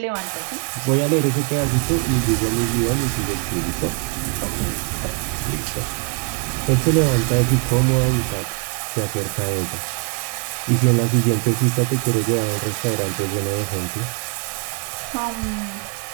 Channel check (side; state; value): left; quieter; 38.6 dB